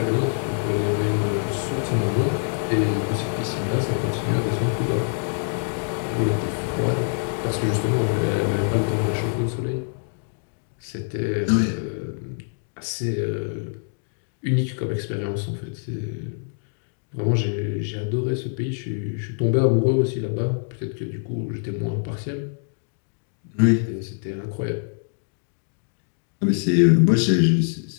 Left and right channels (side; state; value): right; silent; 60 dB below the other